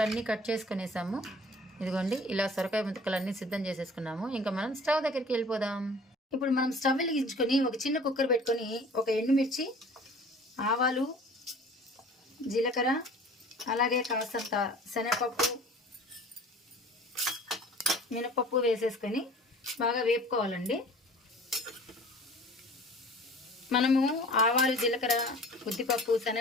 కట్ చేసుకునేసాము. ఇదిగోండి ఇలా సొరకాయ ముక్కలన్నీ సిద్ధం చేసేసుకున్నాము. ఇంకా మనం స్టవ్ దగ్గరికి వెళ్ళిపోదాం. ఇప్పుడు మనం స్టవ్ వెలిగించుకొని ఒక చిన్న కుక్కర్ పెట్టుకొని ఒక ఎండుమిర్చి, ఆవాలు, జీలకర్ర, అలాగే కాస్తంత శనగపప్పు, మినపప్పు వేసేసుకొని బాగా వేపుకోవాలండి. మనము ఆవాలు, జీలకర్ర, ఉద్దిపప్పు,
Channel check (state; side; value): normal; both; correlation 0.46